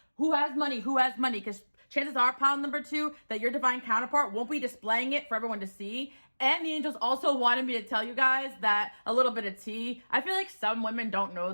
who has money, because chances are, pile number 2, that your divine counterpart won't be displaying it for everyone to see. And the angels also wanted me to tell you guys that a little bit of tea. I feel like some women don't know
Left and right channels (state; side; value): inverted; both; correlation -1.00